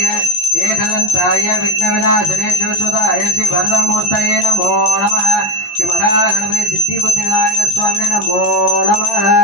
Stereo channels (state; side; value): late; right; 17 ms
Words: महागणाधिपाय विघ्नविनाशने शिवसुताय श्री वरदमूर्तये नमो नमः श्री महागणपति सिद्धिबुद्धिविनायक स्वामिने नमो नमः